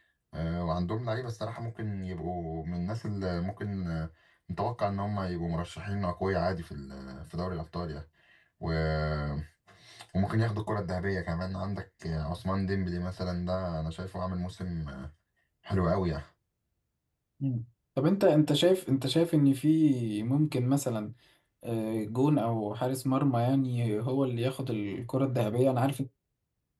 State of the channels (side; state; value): both; identical; correlation 1.00